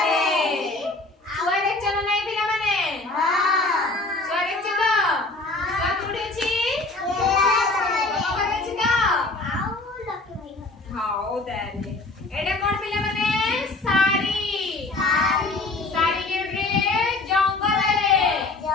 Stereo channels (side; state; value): right; quieter; 3.2 dB